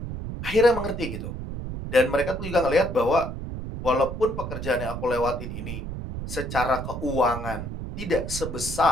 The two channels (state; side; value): noise; right; rumble, 7 dB below the sound